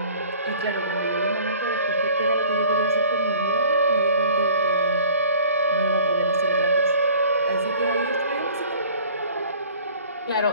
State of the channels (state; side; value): inverted; both; correlation -0.49